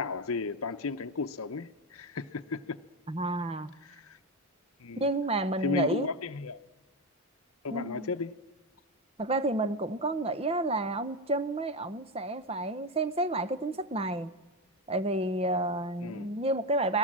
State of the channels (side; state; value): both; normal; correlation 0.13